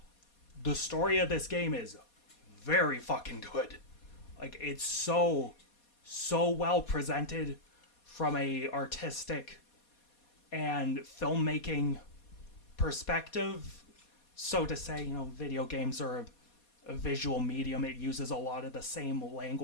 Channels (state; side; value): late; right; 4.2 ms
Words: the story of this game is very fucking good. Like, it's so well presented from a artistic and filmmaking perspective. So to say, video games are a visual medium. It uses a lot of the same